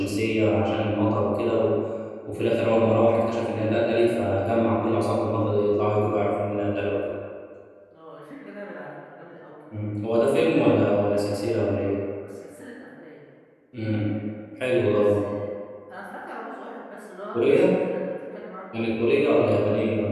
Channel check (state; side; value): identical; both; correlation 1.00